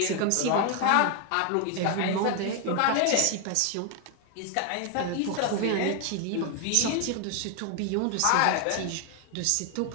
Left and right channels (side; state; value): both; different; correlation 0.01